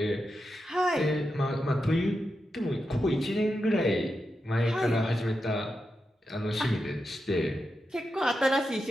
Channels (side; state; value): both; normal; correlation 0.88